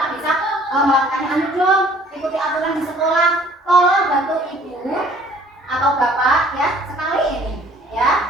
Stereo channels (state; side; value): normal; both; correlation 0.56